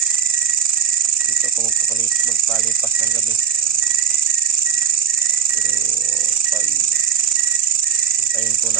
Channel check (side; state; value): left; quieter; 7.3 dB